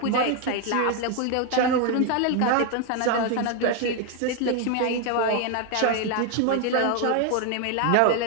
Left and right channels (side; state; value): both; different; correlation 0.01